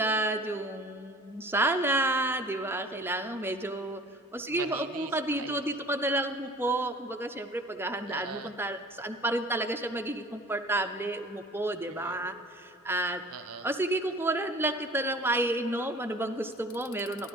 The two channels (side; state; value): both; normal; correlation 0.46